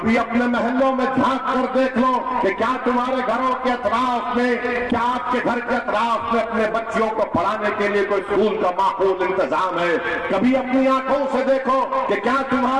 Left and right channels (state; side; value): identical; both; correlation 1.00